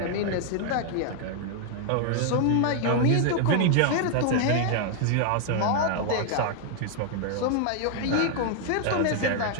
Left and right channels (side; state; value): both; different; correlation 0.00